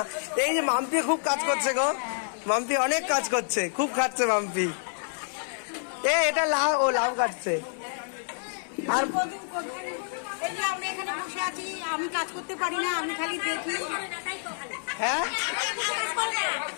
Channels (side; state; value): right; silent; 59 dB below the other